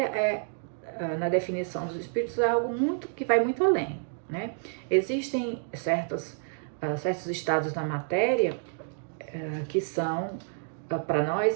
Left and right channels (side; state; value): left; silent; digital silence